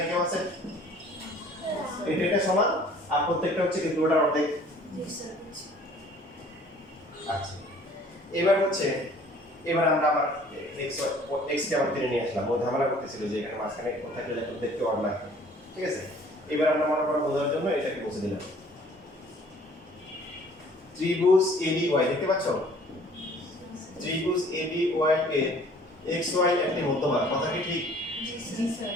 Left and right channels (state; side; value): normal; both; correlation 0.54